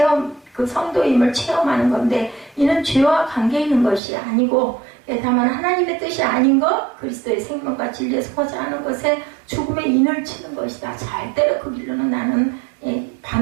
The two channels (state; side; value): drops out; left; at 4.0 s